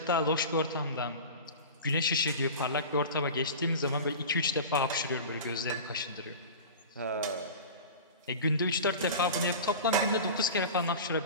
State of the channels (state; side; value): inverted; both; correlation -0.33